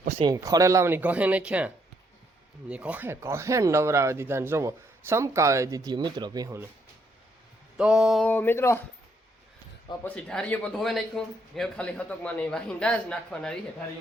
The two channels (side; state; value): both; normal; correlation 0.72